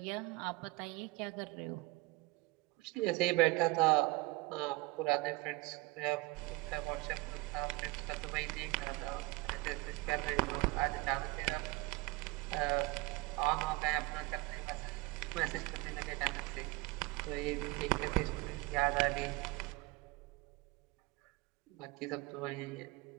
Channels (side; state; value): left; quieter; 21.5 dB